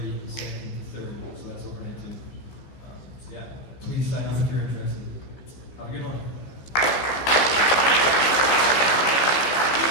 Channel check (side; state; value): right; late; 15 ms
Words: 2nd to 3rd, so that's overnight too. So yeah, please sign up if you're interested. Have a good one.